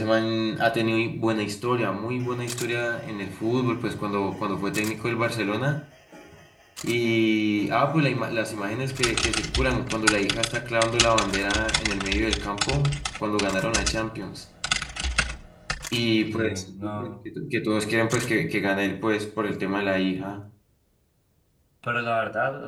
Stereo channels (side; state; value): both; identical; correlation 1.00